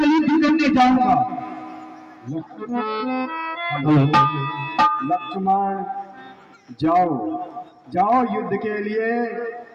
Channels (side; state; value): both; identical; correlation 1.00